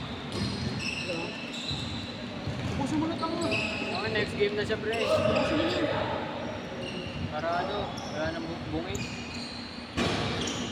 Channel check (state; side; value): identical; both; correlation 1.00